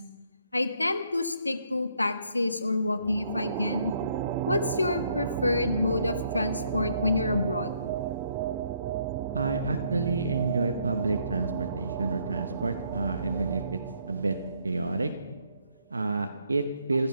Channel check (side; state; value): both; inverted; correlation -0.70